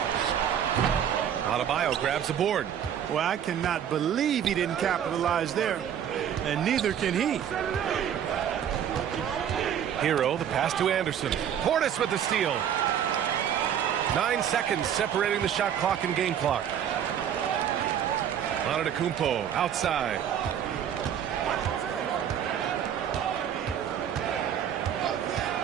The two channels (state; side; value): quieter; left; 9.2 dB